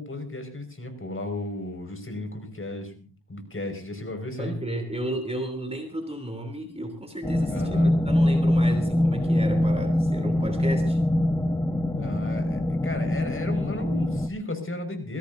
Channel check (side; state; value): both; normal; correlation 0.88